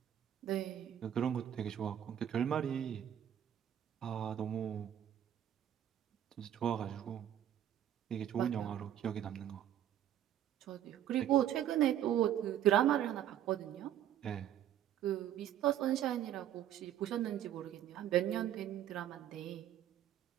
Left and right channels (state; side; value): quieter; left; 10.9 dB